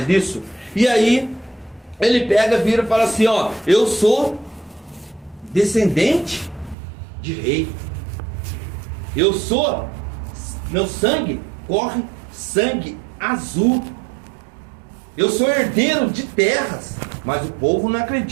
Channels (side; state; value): left; drops out; at 6.8 s